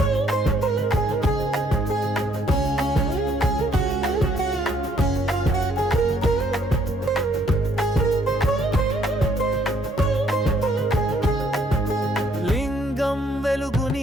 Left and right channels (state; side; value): normal; both; correlation 0.67